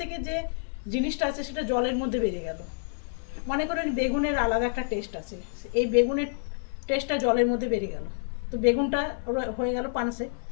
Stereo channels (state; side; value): silent; right; digital silence